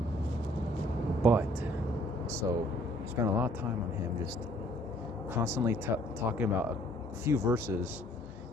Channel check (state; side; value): normal; both; correlation 0.60